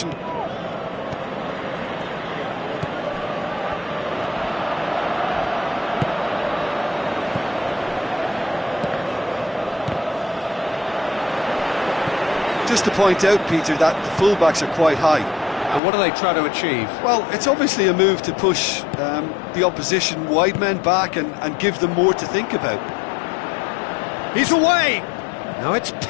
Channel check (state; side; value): drops out; right; at 15.8 s